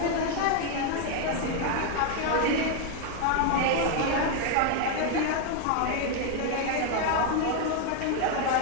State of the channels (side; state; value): both; different; correlation 0.01